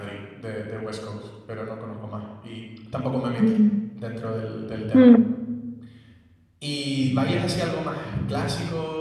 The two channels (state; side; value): identical; both; correlation 1.00